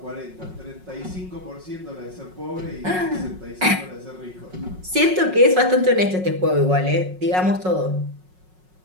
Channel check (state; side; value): late; left; 5.5 ms